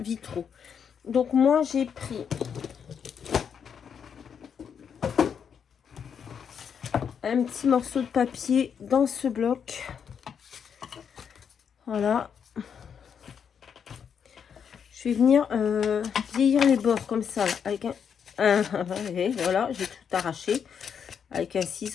Donc moi j'ai pris un petit morceau de papier dans ce bloc. Voilà. Je vais venir vieillir les bords comme ça. Là, avec voilà, j'ai tout arraché. Avec un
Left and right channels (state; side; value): quieter; right; 7.3 dB